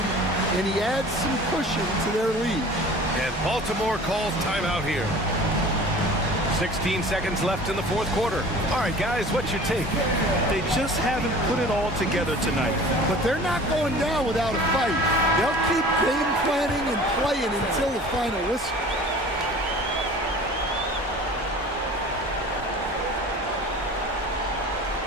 and he adds some cushion to their lead. And Baltimore calls timeout here. 16 seconds left in the fourth quarter. All right, guys, what's your take? They just haven't put it all together tonight. But they're not going down without a fight. They'll keep game planning and playing until the final whistle.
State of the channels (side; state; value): both; normal; correlation 0.43